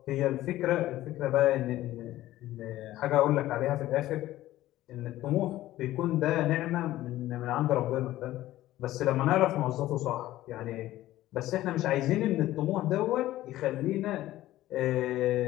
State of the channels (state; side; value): quieter; right; 15.1 dB